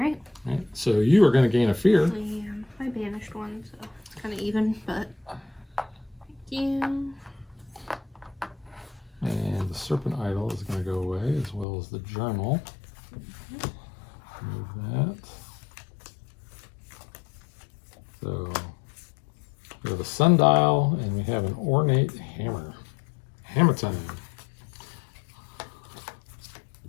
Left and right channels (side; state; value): right; drops out; at 11.7 s